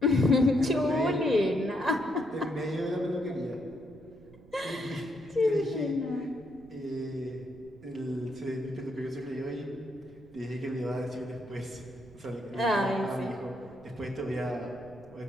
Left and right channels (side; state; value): right; noise; rumble, 23 dB below the sound